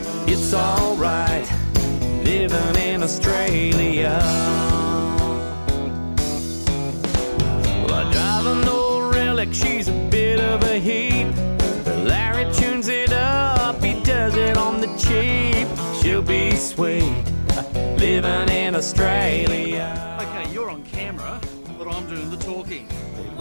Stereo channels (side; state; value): both; inverted; correlation -1.00